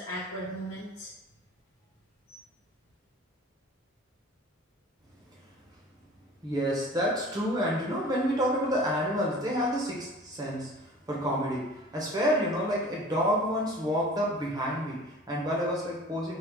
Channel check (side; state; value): both; normal; correlation 0.44